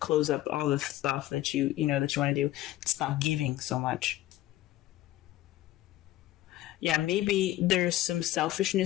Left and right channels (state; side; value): quieter; right; 15.1 dB